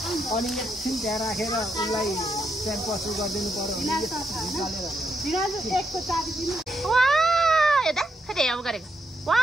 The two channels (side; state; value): both; normal; correlation 0.80